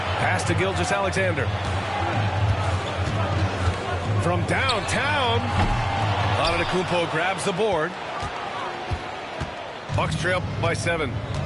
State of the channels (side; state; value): both; identical; correlation 1.00